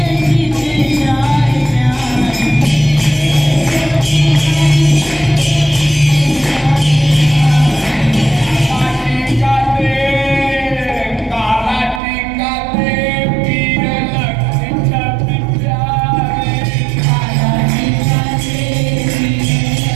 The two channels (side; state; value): left; drops out; at 12.0 s